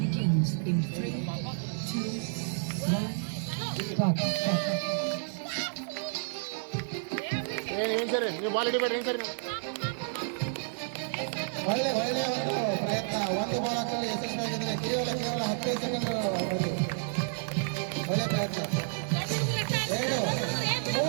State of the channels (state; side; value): silent; left; digital silence